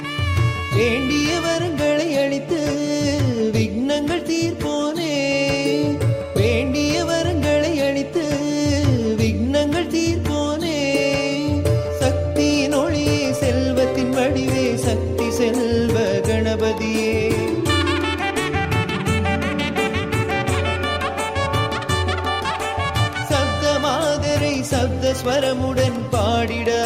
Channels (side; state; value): both; identical; correlation 1.00